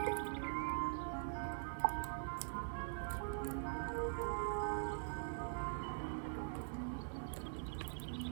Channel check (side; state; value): left; silent; digital silence